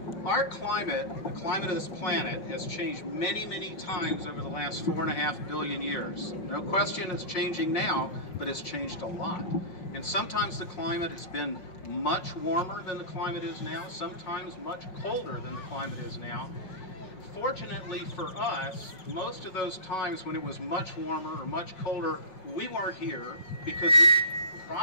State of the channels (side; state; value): right; late; 5.4 ms